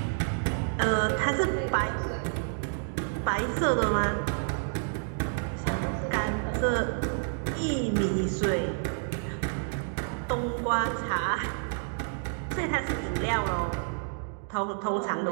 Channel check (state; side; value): silent; left; 58 dB below the other